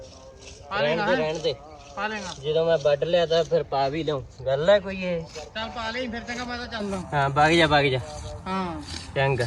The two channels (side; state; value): both; identical; correlation 1.00